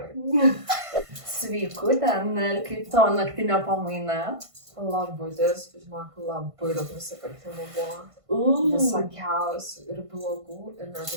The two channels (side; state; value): left; late; 1.5 ms